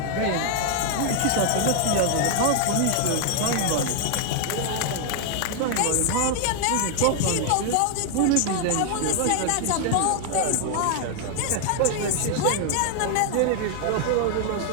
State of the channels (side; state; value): both; different; correlation 0.00